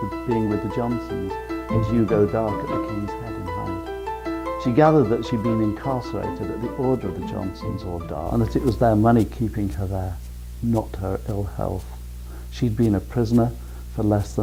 being with the Johnsons as you go dark at the King's Head in Hyde. She gathered that she'd been incarcerated at the order of the Johnsons or Dar, and that it was their money keeping her there, not her ill health. She'd been a prisoner for less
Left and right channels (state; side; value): identical; both; correlation 1.00